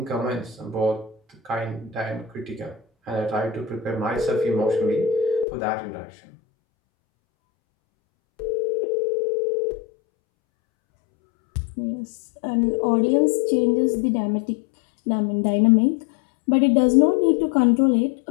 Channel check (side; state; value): right; drops out; at 5.5 s